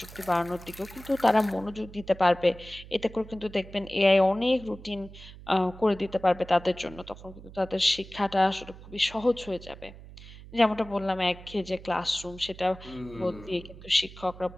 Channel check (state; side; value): noise; right; hum, 17 dB below the sound